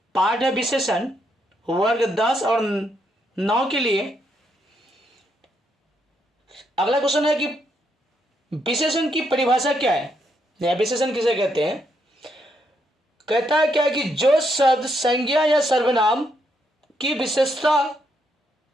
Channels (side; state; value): both; normal; correlation 0.77